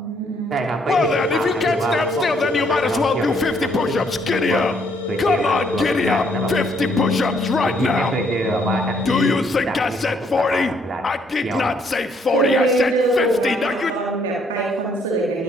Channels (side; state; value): both; normal; correlation 0.68